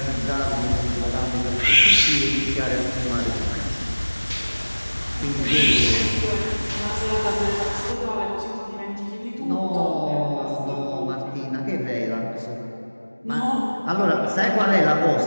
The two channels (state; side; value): inverted; both; correlation -1.00